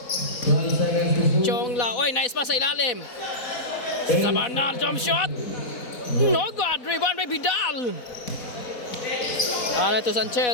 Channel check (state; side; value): late; right; 4.1 ms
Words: Chongla. Oy, nice pass sa ilalim. Sa banal. Jump shot. No good. Rebound by Bidal. Ano ito